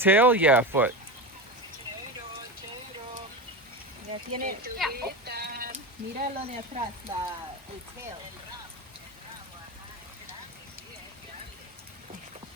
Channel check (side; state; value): both; normal; correlation 0.21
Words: yeah, a foot. Ya tiene. Yeah. Mira lo de atrás, el tail.